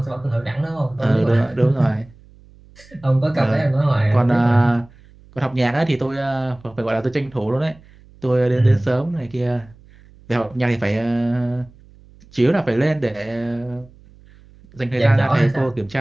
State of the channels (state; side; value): noise; right; hum, 25 dB below the sound